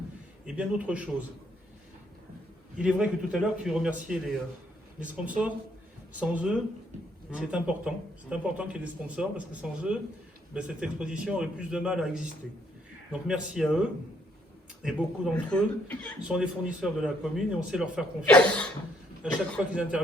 et bien d'autres choses. Il est vrai que tout à l'heure, tu remerciais les sponsors. Sans eux, c'est important. C'est important qu'il y ait des sponsors, parce que sans eux, cette exposition aurait plus de mal à exister. Donc merci à eux. Et beaucoup d'entre eux sont des fournisseurs de la commune, et on sait leur faire confiance à chaque fois qu'ils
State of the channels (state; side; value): normal; both; correlation 0.70